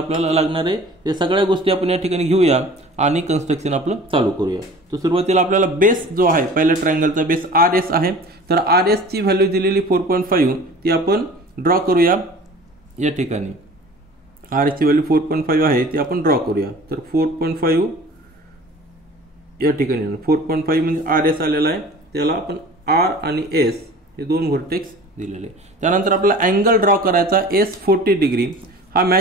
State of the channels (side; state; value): both; normal; correlation 0.43